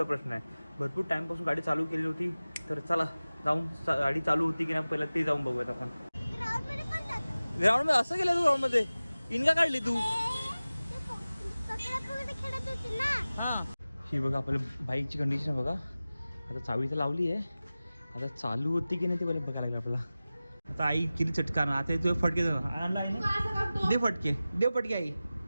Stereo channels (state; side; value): inverted; both; correlation -0.97